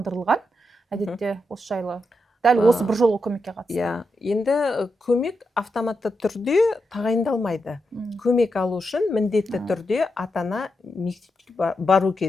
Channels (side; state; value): both; normal; correlation 0.85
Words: Әдетте осы жайлы дәл осы бір жолғы көмекке қатысты. Енді көмек автоматты түрде тағайындалмайды. Көмек алу үшін міндетті түрде ата-ана мектепке бару